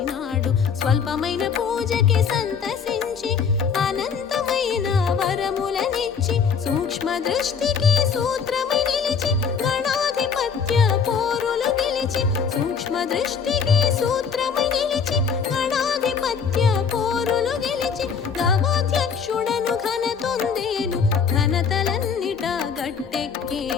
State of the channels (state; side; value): quieter; right; 6.3 dB